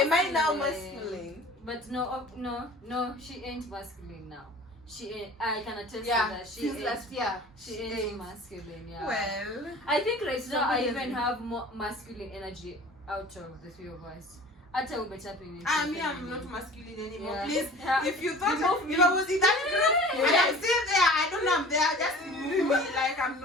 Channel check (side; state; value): both; normal; correlation 0.43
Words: Am I now masculine? But no, she ain't masculine now. She ain't, I can attest to Yeah, that. since last year. She ain't masculine, yeah. Well, I think right now I even have more masculine energy out of the three of us. Hata umetapping into I'm not masculine anymore. Yeah. Please, Yeah. if you thought if I was in that group and I'm still there, I don't know I'm there. Just move me like I'm